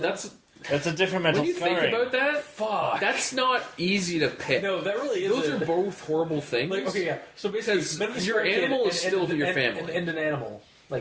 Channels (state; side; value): identical; both; correlation 1.00